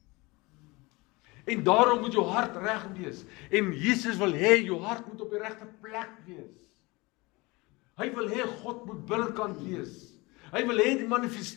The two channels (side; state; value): right; quieter; 24.0 dB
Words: En daarom moet jou hart reg wees. En Jesus wil hê jou hart moet op die regte plek wees. Hy wil hê God moet binnekant wees. Hy wil hê die